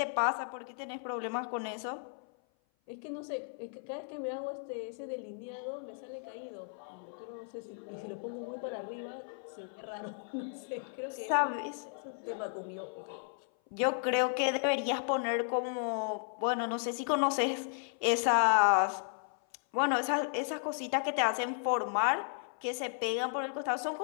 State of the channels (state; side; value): silent; right; 55 dB below the other